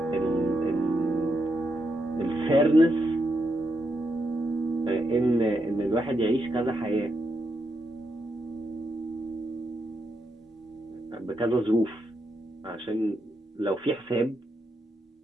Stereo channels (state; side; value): normal; both; correlation 0.82